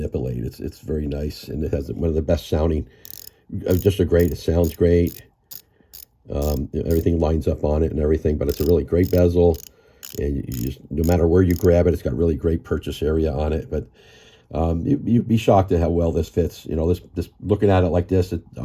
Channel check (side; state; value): both; identical; correlation 1.00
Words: It's very nice, and it has one of the best sounding. It sounds great. Everything lines up on it and everything, but it's a really great bezel, and you just, no matter where you grab it, it's got really great purchase area on it. But you'd be shocked at how well this fits. This looking at it like this, it